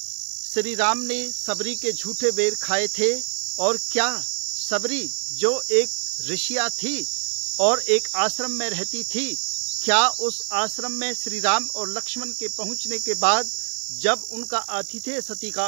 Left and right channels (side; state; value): left; silent; digital silence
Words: श्री राम ने सबरी के झूठे बेर खाए थे और क्या सबरी जो एक ऋषिया थी और एक आश्रम में रहती थी, क्या उस आश्रम में श्री राम और लक्ष्मण के पहुंचने के बाद जब उनका आतिथ्य